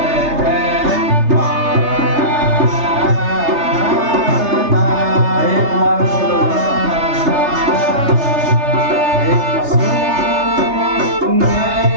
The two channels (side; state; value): left; late; 3.3 ms